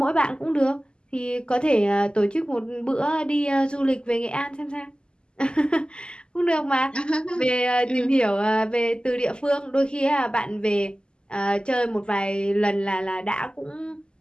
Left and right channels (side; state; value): right; late; 0.048 ms